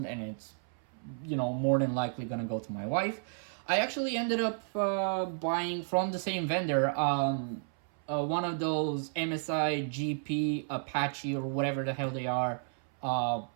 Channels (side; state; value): left; silent; 56 dB below the other